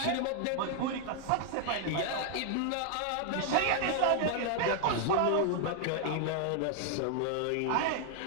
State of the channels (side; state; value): both; different; correlation 0.00